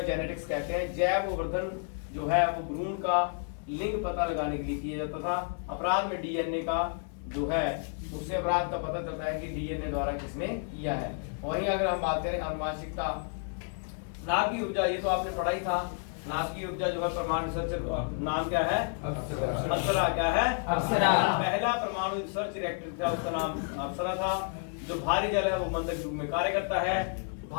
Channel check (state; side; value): silent; right; 57 dB below the other